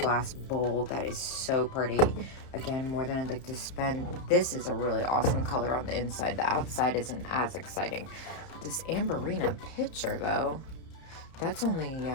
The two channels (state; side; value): late; right; 31 ms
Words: bowl. That is so pretty. Again, more than I'd like to spend. This is a really awesome color on the inside. The outside isn't as exciting. This Amberina pitcher, though, that's only